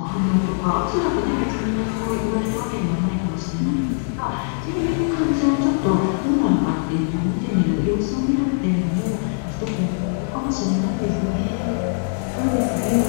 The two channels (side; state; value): right; silent; digital silence